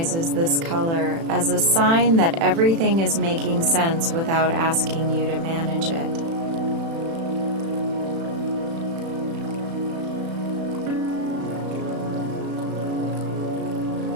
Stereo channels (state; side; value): late; left; 36 ms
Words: this color as a sign that everything is making sense without asking you to manage it.